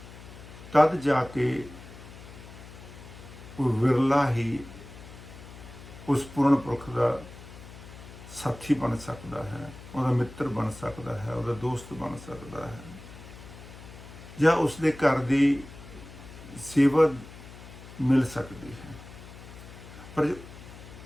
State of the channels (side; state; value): left; noise; hum, 16 dB below the sound